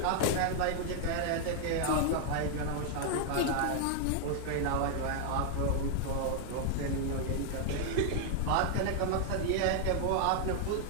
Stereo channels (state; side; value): different; both; correlation 0.00